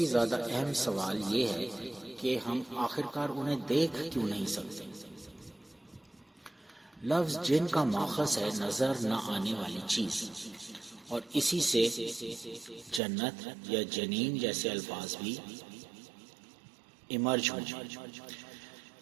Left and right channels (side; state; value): left; drops out; at 13.0 s